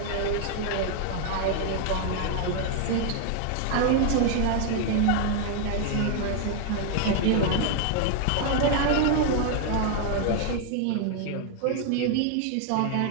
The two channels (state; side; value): different; both; correlation 0.00